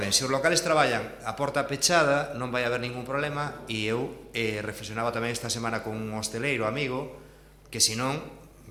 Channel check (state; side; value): identical; both; correlation 1.00